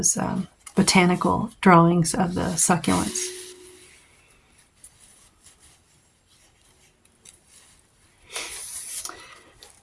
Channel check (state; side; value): identical; both; correlation 1.00